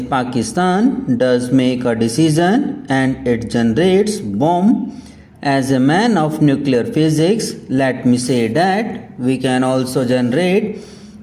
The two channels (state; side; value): identical; both; correlation 1.00